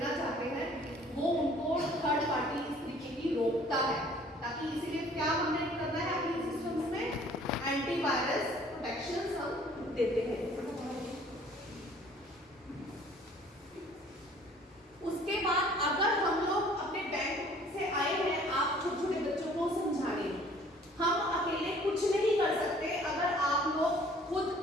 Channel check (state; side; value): normal; both; correlation 0.54